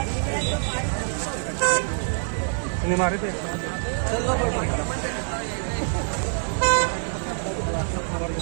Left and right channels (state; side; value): silent; left; 61 dB below the other